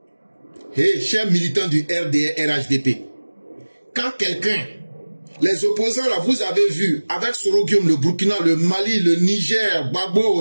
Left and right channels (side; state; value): both; inverted; correlation -1.00